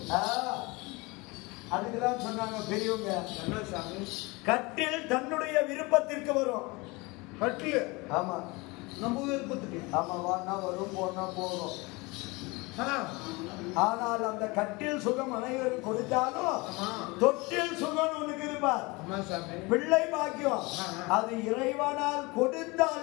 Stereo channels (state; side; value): quieter; right; 25.0 dB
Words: அதுக்குதான் சொன்னாங்க பெரியவங்க, கட்டில் தன்னுடைய விருப்பத்திற்கு வரும். கட்டில்? ஆமா, நம்ம விருப்பத்துக்கு. ஆமா, வானா வரும், போனா போகும். ஆனால் அந்த கட்டில் சுகம் அனைவரும் கொடுத்தாலும் தொட்டில் சுகம் உனக்கு இருப்பார். பிள்ளை பாக்கியம் அது இறைவனால்